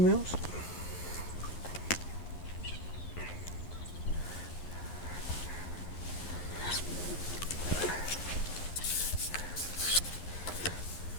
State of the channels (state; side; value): late; right; 11 ms